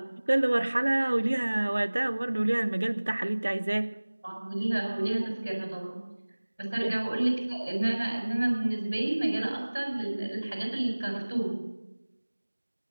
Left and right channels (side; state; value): both; inverted; correlation -1.00